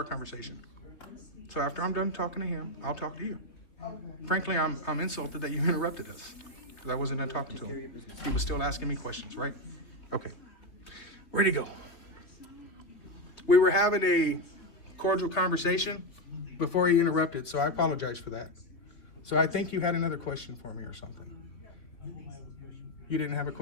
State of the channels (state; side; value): late; right; 3.7 ms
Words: conversation. So after I'm done talking to him, I'll talk to you. Frankly, I'm insulted that you interrupted us. Because I wasn't done talking to Take care of your him. business. He was still asking me questions, right? Okay. Where'd he go? We were having a cordial conversation before he interrupted, so I apologize for that. So I think you had another question for me or something. You didn't have a